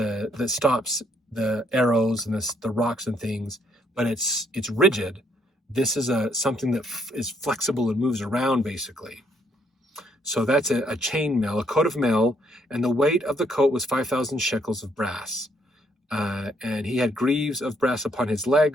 stops the arrows and the rocks and things, but it's rigid, this is something that is flexible and moves around, basically. So that's a chain mail, a coat of mail, and the weight of the coat was 5,000 shekels of brass. And he had greaves of brass upon his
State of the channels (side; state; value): both; normal; correlation 0.70